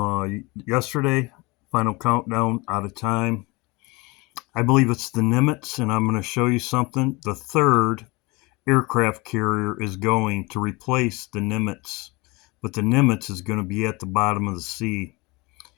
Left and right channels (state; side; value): quieter; right; 25.0 dB